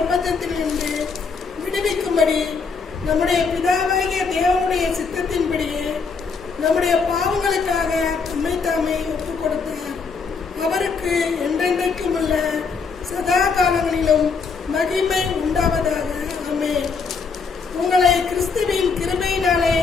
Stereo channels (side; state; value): right; quieter; 5.1 dB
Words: விடுவிக்கும்படி நம்முடைய பிதாவாகிய தேவனுடைய சித்தத்தின்படியே நம்முடைய பாவங்களுக்காக தம்மை தாமே ஒப்புக் கொடுத்தார். அவருக்கு என்றென்றைக்கும் உள்ள சதா காலங்களிலும் மகிமை உண்டாவதாக. ஆமென். உங்களை கிறிஸ்துவின் கிருபையினாலே